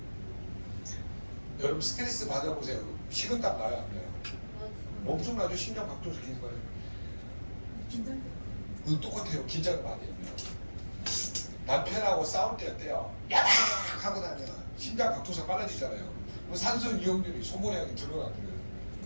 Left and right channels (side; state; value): both; inverted; correlation -1.00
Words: 여러분 스트레스 받아보세요. 식은땀 나요 안 나요? 엄청나죠. 심장 박동수 기는 거예요. 그거 똑같아요. 긴장을 많이 하면. 남편하고 싸울 때 어때요? 야박 하고 나면 심장 박동수가 빨라지잖아요. 그럼 산소 이용률이 소모량이 늘어나거든요.